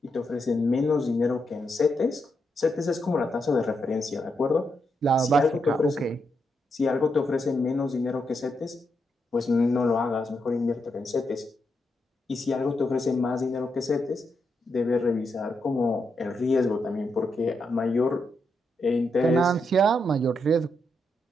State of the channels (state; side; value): normal; both; correlation 0.82